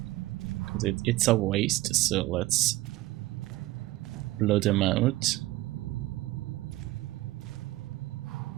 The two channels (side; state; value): left; quieter; 17.9 dB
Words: because it's a waste, so let's blow them out.